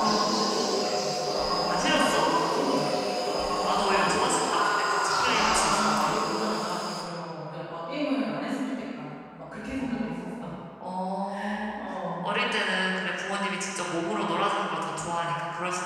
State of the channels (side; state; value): both; identical; correlation 1.00